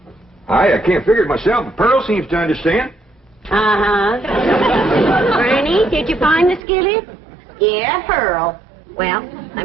I can't figure it myself, but Pearl seems to understand. Uh-huh. Granny, did you find the skillet? Yeah, Pearl. Well,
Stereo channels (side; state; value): left; drops out; at 6.6 s